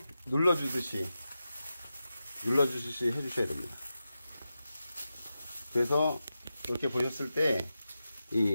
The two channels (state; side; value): inverted; both; correlation -0.91